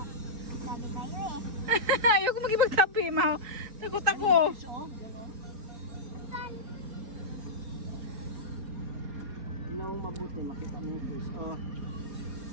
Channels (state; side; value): late; left; 4.5 ms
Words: Sabi kayo eh. Ayoko magibagtabi, ma. Takot ako. The sun. Ano mabuti, makita mo yung fish. Oh.